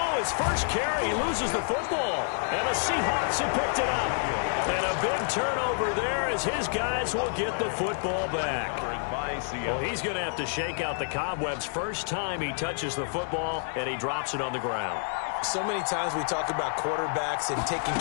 his first carry, he loses the football. And the Seahawks have picked it up. And a big turnover there as his guys will get the football back. Well, he's going to have to shake out the cobwebs first time he touches the football, and he drops it on the ground. So many times we talk about quarterbacks and taking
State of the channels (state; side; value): silent; right; 59 dB below the other